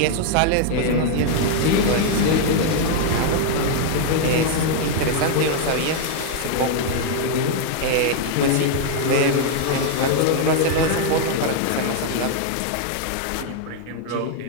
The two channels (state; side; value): different; both; correlation 0.00